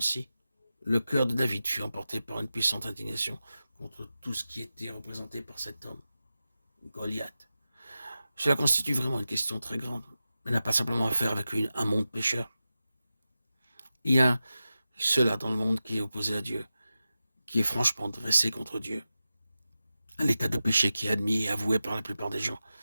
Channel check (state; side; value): inverted; both; correlation -0.93